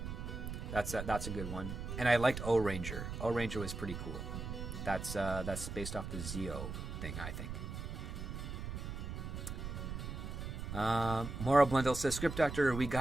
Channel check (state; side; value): noise; right; rumble, 6 dB below the sound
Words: That's a good one. And I liked O Ranger. O Ranger was pretty cool. That's based off the Zeo thing, I think. Mora Blundell says, Script Doctor, we